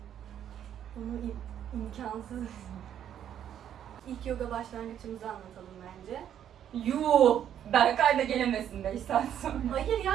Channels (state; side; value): quieter; left; 9.9 dB